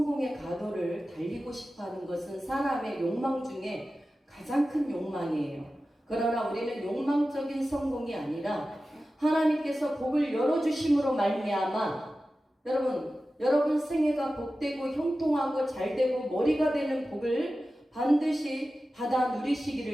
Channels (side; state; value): both; normal; correlation 0.94